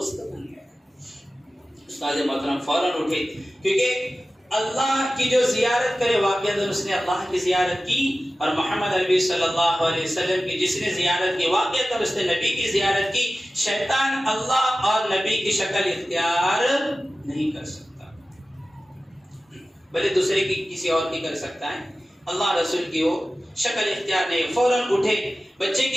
بن گیا. استاد محترم فوراً اٹھے، کیونکہ اللہ کی جو زیارت کرے واقعہ اس نے اللہ کی زیارت کی، اور محمد عربی صلی اللہ علیہ وسلم کی جس نے زیارت کی واقعہ اس نے نبی کی زیارت کی. شیطان اللہ اور نبی کی شکل اختیار نہیں کر سکتا، بلکہ دوسرے کی کسی اور کی کر سکتا ہے، اللہ رسول کی وہ شکل اختیار نہیں. فوراً اٹھے، بچے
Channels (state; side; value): normal; both; correlation 0.95